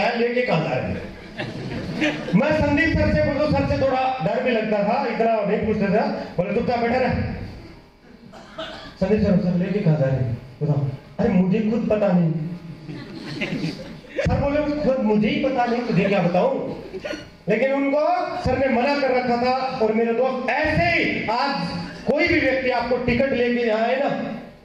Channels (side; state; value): both; identical; correlation 1.00